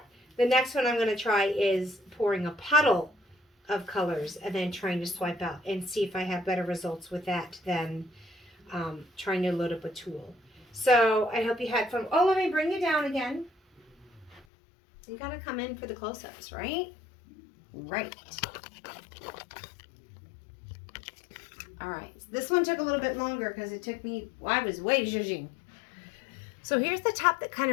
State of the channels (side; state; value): right; drops out; at 14.5 s